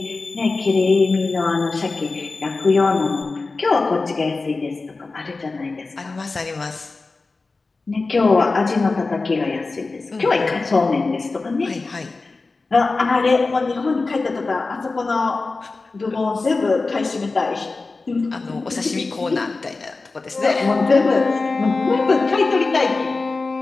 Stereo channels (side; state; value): right; quieter; 3.7 dB